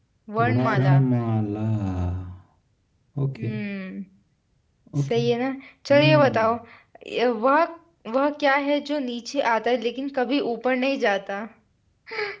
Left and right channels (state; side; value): identical; both; correlation 1.00